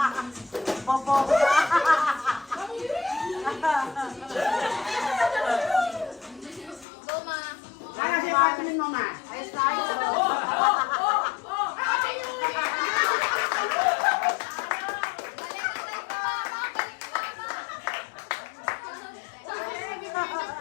Popo. Go, ma. Para siya patinin mo, ma.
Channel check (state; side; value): drops out; right; at 6.9 s